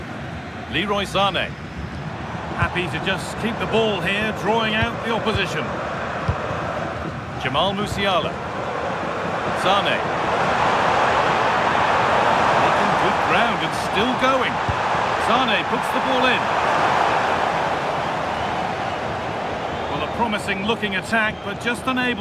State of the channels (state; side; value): identical; both; correlation 1.00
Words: Leroy Sané. Happy to just keep the ball here, drawing out the opposition. Jamal Musiala. Sané. Making good ground and still going. Sané puts the ball in. Well, a promising looking attack, but just